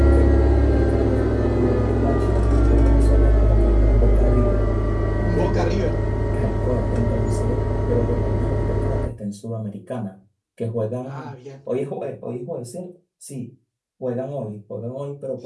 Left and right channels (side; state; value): both; identical; correlation 1.00